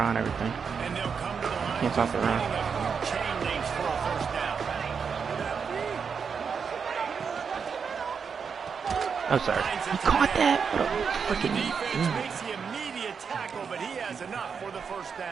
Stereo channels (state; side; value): quieter; left; 6.2 dB